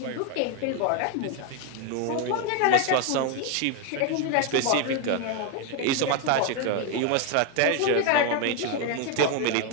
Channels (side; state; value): both; different; correlation 0.01